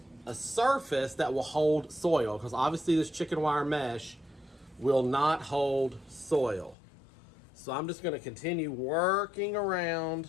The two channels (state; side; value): drops out; right; at 6.8 s